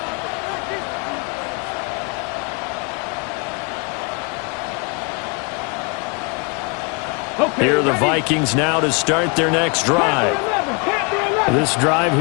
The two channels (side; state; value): right; quieter; 32.3 dB